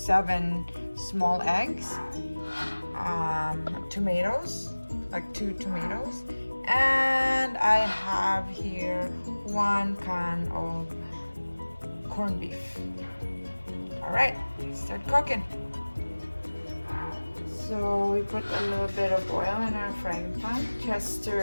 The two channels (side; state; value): both; inverted; correlation -1.00